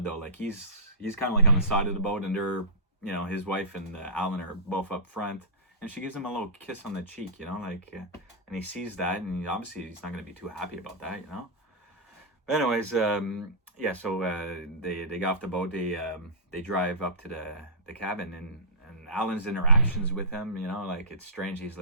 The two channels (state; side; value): normal; both; correlation -0.19